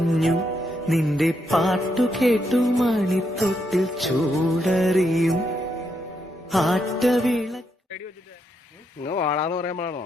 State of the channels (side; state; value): both; normal; correlation 0.79